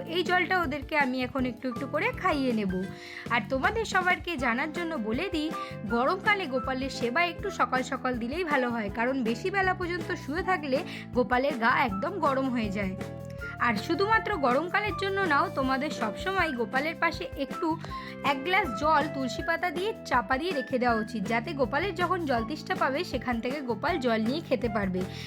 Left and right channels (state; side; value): identical; both; correlation 1.00